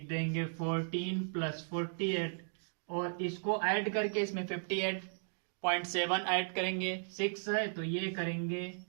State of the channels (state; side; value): silent; left; digital silence